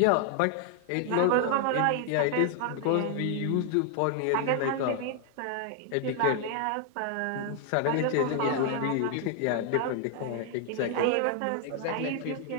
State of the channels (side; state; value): both; different; correlation 0.00